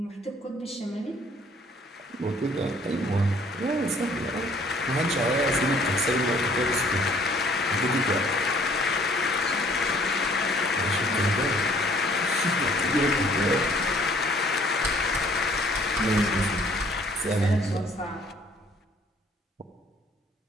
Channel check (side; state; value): both; normal; correlation 0.59